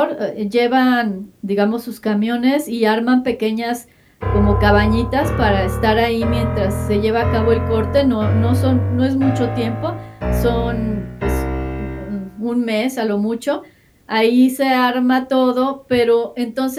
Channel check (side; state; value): both; identical; correlation 1.00